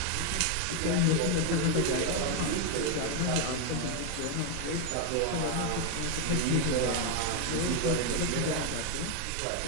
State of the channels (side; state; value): both; different; correlation 0.00